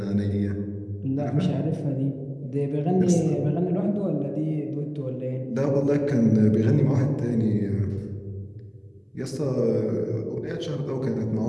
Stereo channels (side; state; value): both; identical; correlation 1.00